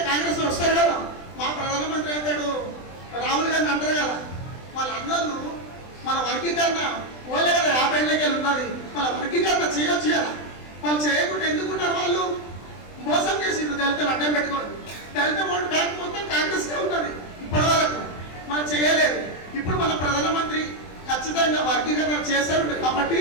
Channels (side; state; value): right; late; 23 ms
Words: కాంగ్రెస్ వస్తారు కదా. మా ప్రధానమంత్రి అంటాడు, రాహుల్ గాంధీ అంటారు కదా, వాళ్ళ అన్నోళ్ళు మన వర్గీకరణ ఓలే కదా 50 ఏళ్ళకి ఉన్నది, వాళ్ళ వర్గీకరణ చేయొచ్చు కదా. వాళ్ళు చేయకుండా ఎందుకున్నారు? వాళ్ళు మోసం చేసిండ్రు దళితులు అడ్డం పెట్టుకోండి. దళిత ఓటు బ్యాంక్ మొత్తం కాంగ్రెస్కే ఉన్నది ఇప్పటి వరకు, మనం చేయలేదు. ఇప్పుడు మన ప్రధానమంత్రి ఖచ్చితంగా వర్గీకరణ చేస్తారు కాబట్టి